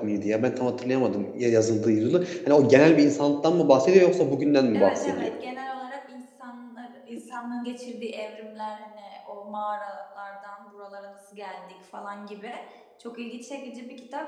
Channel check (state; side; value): identical; both; correlation 1.00